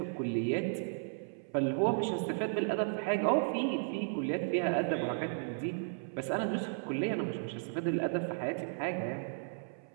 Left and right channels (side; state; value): left; silent; 55 dB below the other